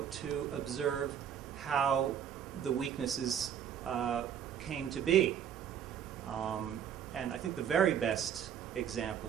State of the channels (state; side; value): quieter; left; 9.0 dB